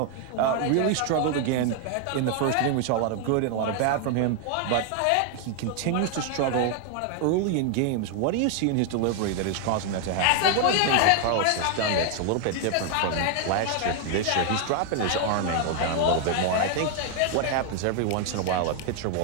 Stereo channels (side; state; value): both; different; correlation 0.00